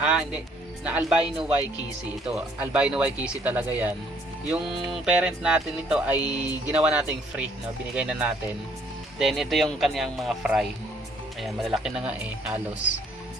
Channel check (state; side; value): normal; both; correlation 0.64